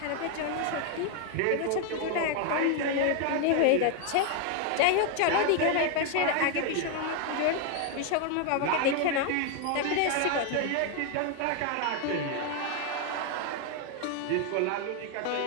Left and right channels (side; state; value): both; different; correlation 0.01